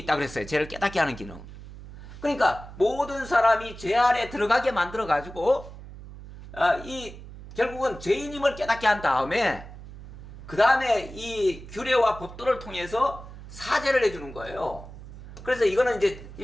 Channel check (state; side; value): noise; right; hum, 15 dB below the sound